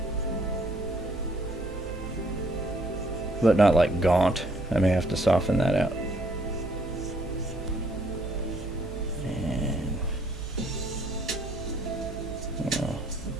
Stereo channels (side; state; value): right; noise; hum, 11 dB below the sound